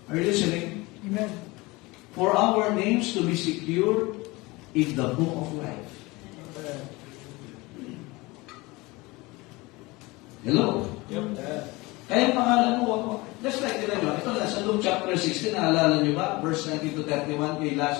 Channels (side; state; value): right; quieter; 22.9 dB